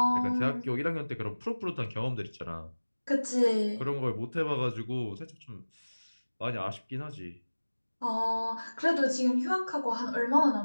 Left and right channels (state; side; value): inverted; both; correlation -1.00